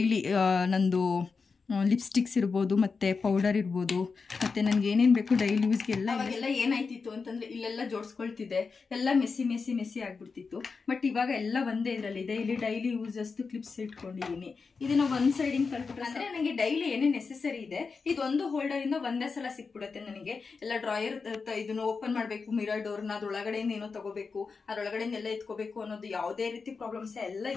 ನಂದು ಲಿಪ್ಸ್ಟಿಕ್ಸ್ ಇರ್ಬೋದು ಮತ್ತು ಪೌಡರ್ ಇರ್ಬೋದು ಮತ್ತು ನನಗೆ ಏನೇನು ಬೇಕು ಡೈಲಿ ಯೂಸ್ಗೆ ಎಲ್ಲ ಏನಾಯ್ತಿತ್ತು ಅಂತಂದರೆ ಇಲ್ಲೆಲ್ಲ ಜೋಡಿಸ್ಕೊಳ್ತಿದ್ದೆ, ಎಲ್ಲ ಮೆಸ್ಸಿ ಆಗಿಬಿಡ್ತಿತ್ತು. ಬಟ್ ಇವಾಗ ಎಲ್ಲ ಒಂದೇ ಇದರಲ್ಲಿ ಇದೆ. ಇಲ್ಲಿ ಡೈಲಿ ಯೂಸ್ ಅಷ್ಟು ಕ್ಲಿಪ್ಸ್ ಇಟ್ಕೊಂಡಿದ್ದೀನಿ. ಇದನ್ನು ಒಂದು ಸೈಡಿಂಗ್ ಕಲ್ಬಿಟ್ರೆ ಅಂದರೆ ನನಗೆ ಡೈಲಿ ಏನೇ ನೆಸೆಸರಿ ಇದೆ ಇದೊಂದು ಹೋಲ್ಡರಿಂದ ಒಂದೇ ಸಲ ಸಿಕ್ಬಿಡುತ್ತೆ ನನಗೆ. ಎಲ್ಲ ಡ್ರಾಯರ್ ಇದನ್ನು ಓಪನ್ ಮಾಡಬೇಕು, ಮಿರರ್ ಡೋರ್ನ ಅದ್ರೊಳಗಡೆಯಿಂದ ಏನೋ ತಗೋಬೇಕು, ಅದ್ರೊಳಗಡೆಯಿಂದ ಎಲ್ಲ ಎತ್ಕೋಬೇಕು ಅನ್ನೋದು ಯಾವುದೇ ರೀತಿ ಪ್ರಾಬ್ಲಮ್ಸ್ ಎಲ್ಲ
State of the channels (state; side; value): quieter; right; 4.8 dB